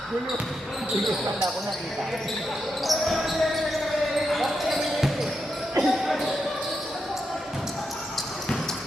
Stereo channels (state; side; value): normal; both; correlation 0.85